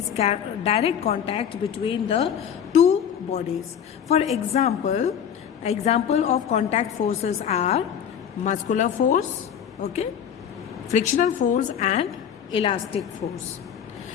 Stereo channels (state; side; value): quieter; right; 8.6 dB